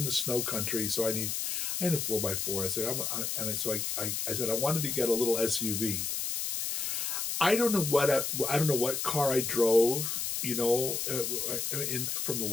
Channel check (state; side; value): noise; left; hiss, 1 dB below the sound